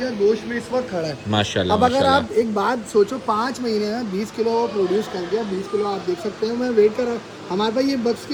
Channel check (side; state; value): both; identical; correlation 1.00